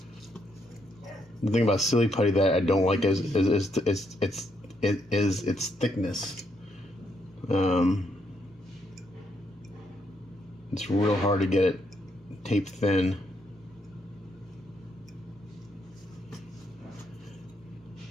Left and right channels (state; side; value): normal; both; correlation 0.76